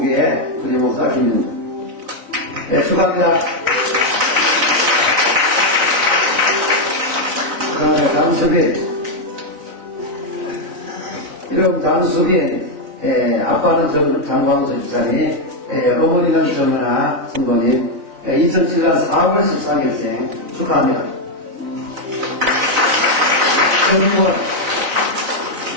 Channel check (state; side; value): late; left; 4.0 ms